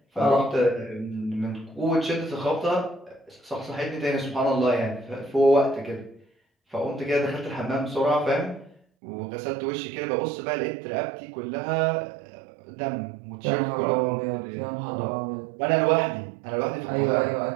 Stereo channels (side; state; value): left; drops out; at 8.8 s